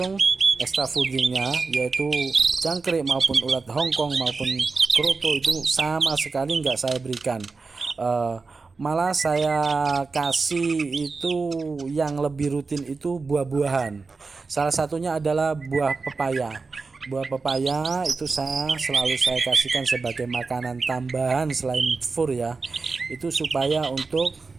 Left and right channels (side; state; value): left; quieter; 4.3 dB